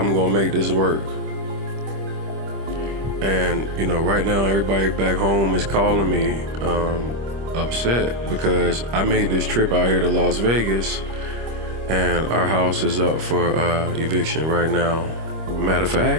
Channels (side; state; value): left; late; 25 ms